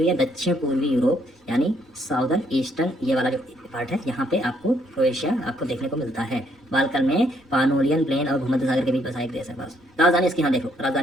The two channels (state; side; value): normal; both; correlation 0.70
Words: हुई है, दक्षिण पूर्वी यूरोप यानी साउदर्न ईस्टर्न, ये वाला जो पार्ट है यहाँ पे आपको क्रोएशिया आपको देखने को मिलता है। बाल्कन में पानोलियन प्लेन और भूमध्य सागर के बीच बसा एक देश है बस। राजधानी इसकी यहाँ देखो,